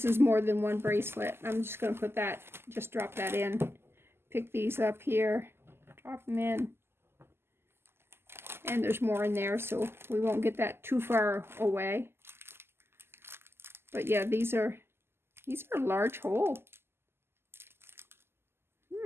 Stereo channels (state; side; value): late; left; 0.12 ms